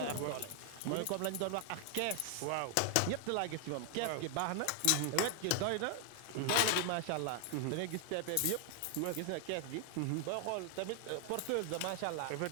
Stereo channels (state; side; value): different; both; correlation 0.00